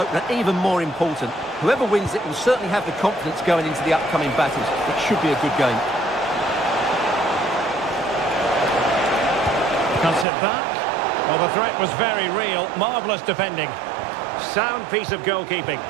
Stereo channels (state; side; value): drops out; left; at 10.2 s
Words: even more important. Whoever wins it will certainly have the confidence going into the upcoming battles. It should be a good game. Cuts it back. Well, the threat was very real. Marvellous defending. Sound piece of goalkeeping.